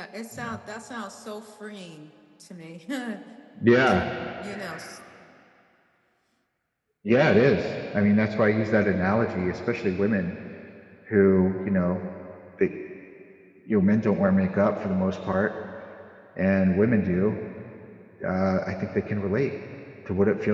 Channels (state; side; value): identical; both; correlation 1.00